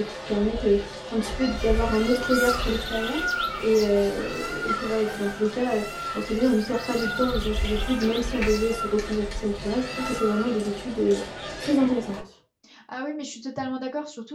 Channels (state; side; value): identical; both; correlation 1.00